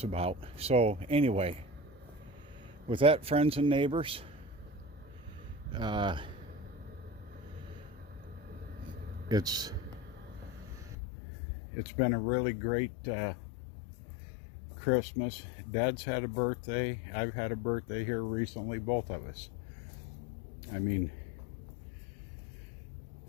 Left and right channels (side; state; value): right; drops out; at 11.0 s